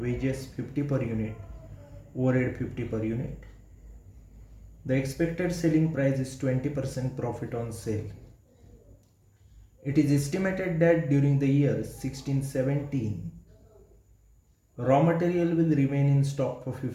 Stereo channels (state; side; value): identical; both; correlation 1.00